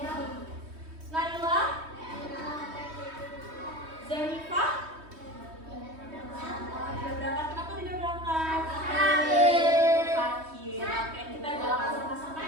Naila, Zenifah. Tidak berangkat, kenapa tidak berangkat? Sakit. Oke, kita doakan sama-sama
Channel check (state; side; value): late; left; 3.2 ms